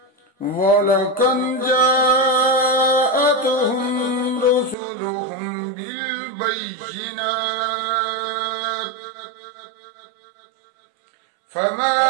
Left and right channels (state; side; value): drops out; left; at 4.8 s